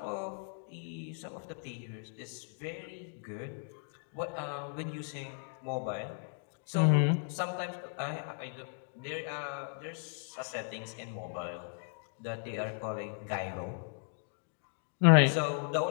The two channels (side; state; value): right; silent; digital silence